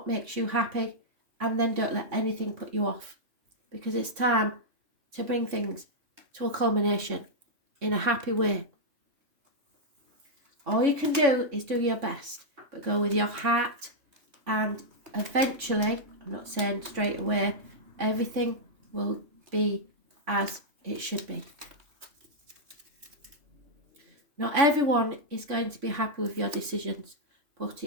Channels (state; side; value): late; left; 3.5 ms